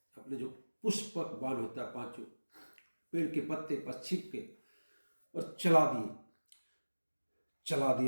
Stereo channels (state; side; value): inverted; both; correlation -1.00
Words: अपने जो पुष्पक बाण होता है, पांचों पेड़ के पत्ते पर छिप के और चला